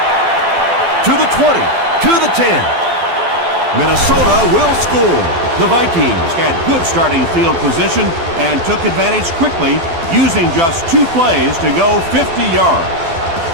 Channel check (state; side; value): late; left; 12 ms